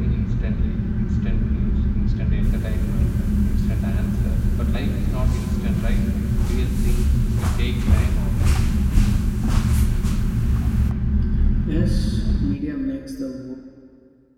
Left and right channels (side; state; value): both; identical; correlation 1.00